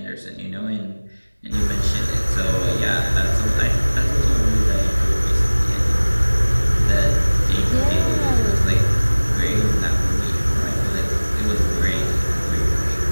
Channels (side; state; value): both; inverted; correlation -1.00